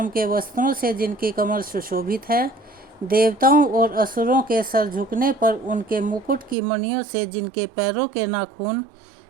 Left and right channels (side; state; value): left; drops out; at 6.6 s